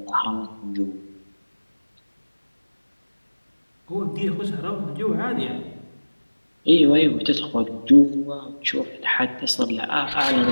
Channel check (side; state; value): both; inverted; correlation -1.00